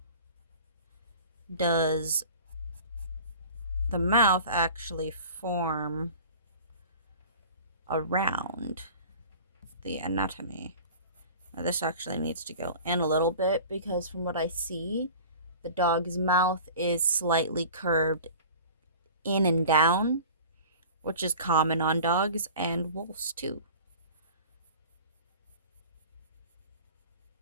does the mouth actually form around the anatomy. Now this actually needs to go in a little bit because from what I see, the dog's mouth is slightly curved in and down, which is common on dogs and wolves too.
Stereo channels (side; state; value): both; inverted; correlation -0.42